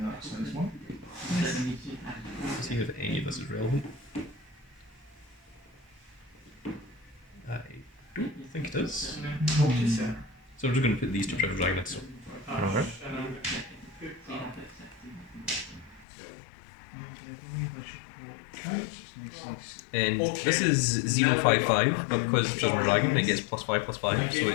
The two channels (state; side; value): drops out; right; at 16.1 s